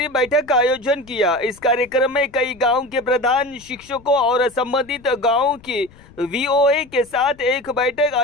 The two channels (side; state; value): left; noise; rumble, 25 dB below the sound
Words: बैठक का आयोजन किया। इस कार्यक्रम में कई गांव के प्रधान, शिक्षकों और संबंधित गांवों की वीओए के साथ एक बैठक